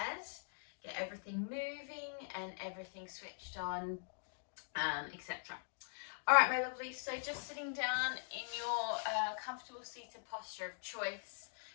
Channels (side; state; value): right; silent; digital silence